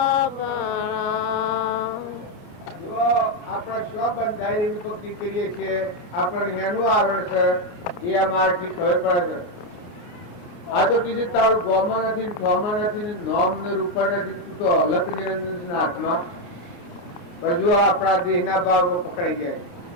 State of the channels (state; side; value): late; right; 29 ms